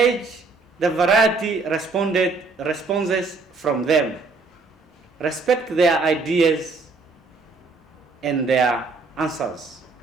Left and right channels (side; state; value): left; quieter; 4.0 dB